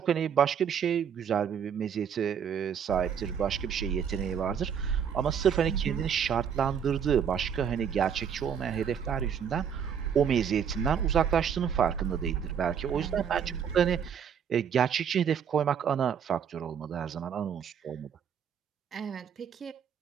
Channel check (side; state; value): left; quieter; 7.8 dB